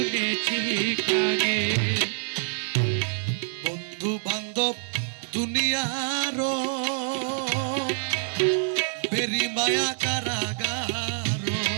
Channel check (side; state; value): left; silent; digital silence